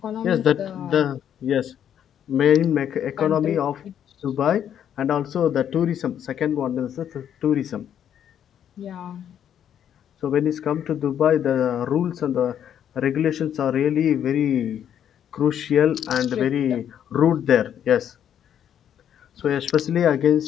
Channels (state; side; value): quieter; right; 9.5 dB